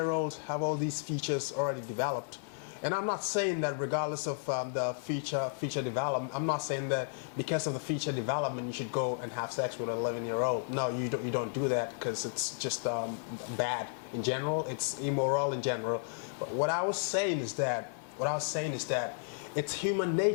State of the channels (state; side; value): silent; right; digital silence